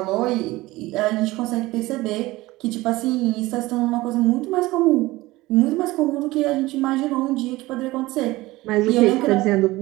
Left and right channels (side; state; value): left; quieter; 19.3 dB